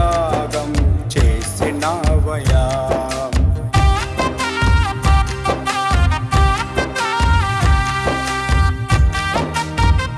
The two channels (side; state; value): both; identical; correlation 1.00